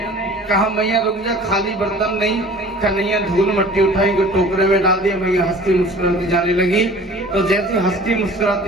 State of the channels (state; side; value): normal; both; correlation 0.46